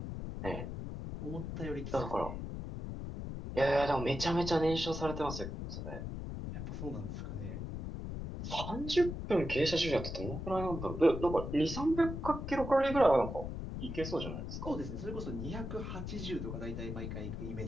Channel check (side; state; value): left; noise; rumble, 6 dB below the sound